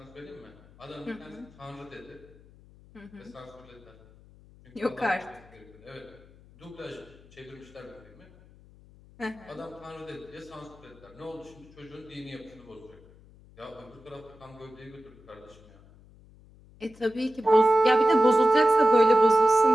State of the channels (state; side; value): noise; left; hum, 24 dB below the sound